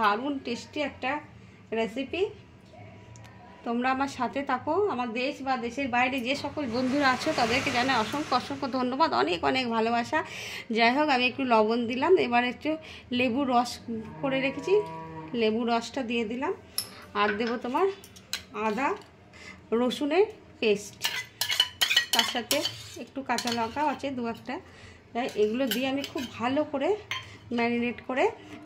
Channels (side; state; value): both; identical; correlation 1.00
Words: টেস্টি একটা রেসিপি। তোমরা আমার সাথে থাকো। আমার দেশ বা দেশের বাইরে যে সকল বন্ধুরা আছো তাদেরকে জানাই অসংখ্য অসংখ্য ধন্যবাদ, অনেক অনেক ভালোবাসা। যাই হোক, আমি একটু লবণ দিলাম, এবার একটু লেবুর রস করে রেখেছি, লেবুর রসটা দিয়ে দিলাম। আর দেবো তোমার আদা রসুনের পেস্ট, তার সাথে একটু কাঁচা লঙ্কাও আছে দু একটা। এগুলো দিয়ে আমি খুব ভালো করে ম্যারিনেট করে